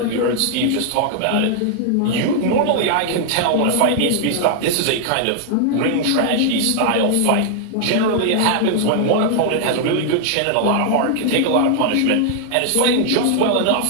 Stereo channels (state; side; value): different; both; correlation 0.00